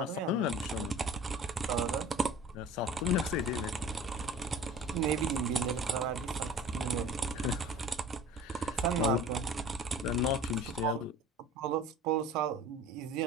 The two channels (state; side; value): normal; both; correlation 0.42